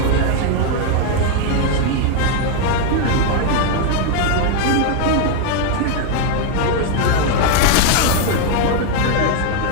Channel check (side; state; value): both; different; correlation 0.01